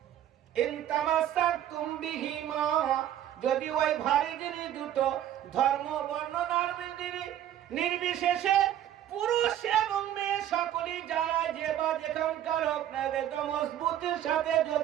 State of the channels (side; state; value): left; quieter; 11.5 dB